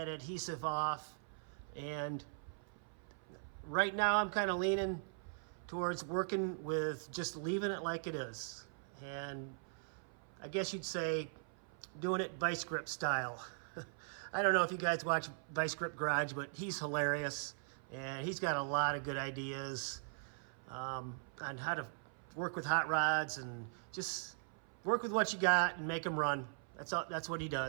adhesive off. And right now I'm kind of leaning towards working with just leaving it like it is. And I guess you'd say doing it vice grip style. I don't know if you guys watch Vice Grip Garage, but he's hilarious and he's got a lot of good ideas on how to work with hot rods and just work with what you got and make them run. That's what he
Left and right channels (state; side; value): silent; left; 51 dB below the other